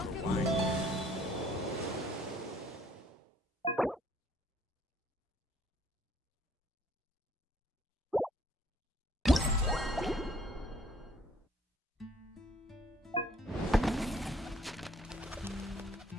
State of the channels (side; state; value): both; normal; correlation 0.61